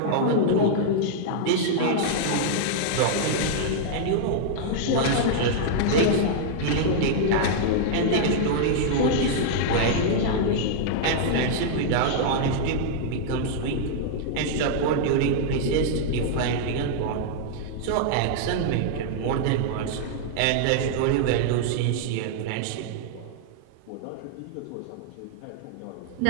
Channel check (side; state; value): both; different; correlation -0.01